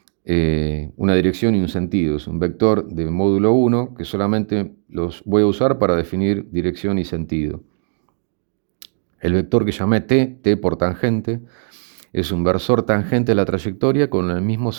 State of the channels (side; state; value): left; silent; digital silence